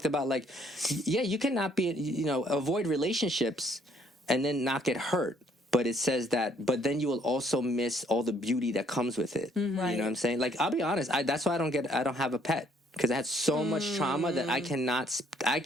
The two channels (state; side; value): normal; both; correlation 0.65